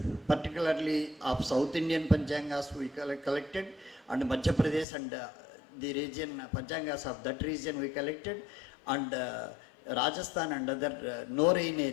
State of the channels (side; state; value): right; drops out; at 4.9 s